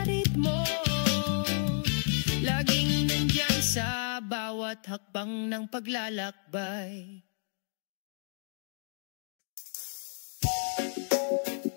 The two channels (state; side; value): silent; right; digital silence